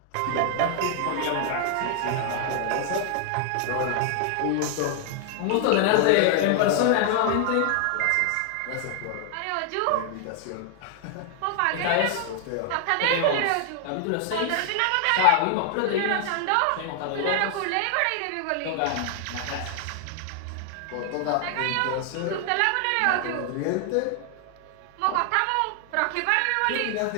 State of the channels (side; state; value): both; different; correlation 0.00